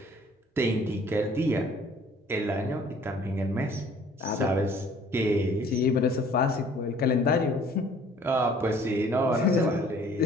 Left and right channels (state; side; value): normal; both; correlation 0.55